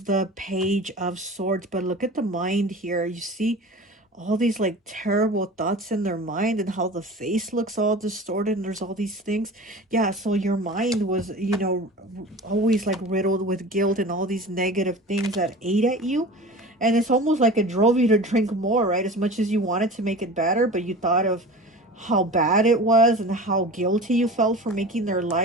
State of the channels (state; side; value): normal; both; correlation 0.36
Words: the Page of Swords, but look at the mind here. You see all these like terrible thoughts in their mind, and how the face looks all distorted, and there's all these things. Yeah, so your mind was, you know, always like riddled with guilt and all these negative things that ate at you. And it's almost like it drove you to drink more, right? As much as you wanted to make it better, but you thought of how bad it was and how guilty you felt for making their